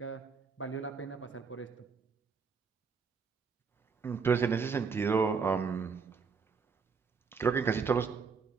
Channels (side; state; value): left; quieter; 5.4 dB